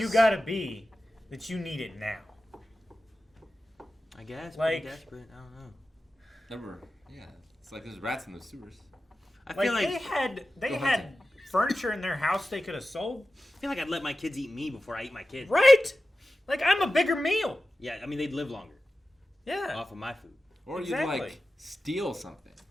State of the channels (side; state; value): both; normal; correlation 0.94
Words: gotta be that you need it now? I guess. Like- Pretty desperate. I don't know. Never. Yeah, it's like there's rats in the sewers. I feel like they Go had hunting. furniture in their house they could have sold. I feel like I'd let my kids eat me before I eat my kids. Right? Like, I'm a bigger meal. Yeah, I mean they'd live longer Yeah. off of my food. Or Exactly. you'd like steal something,